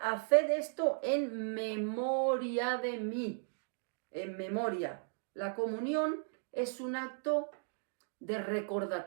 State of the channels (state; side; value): silent; left; digital silence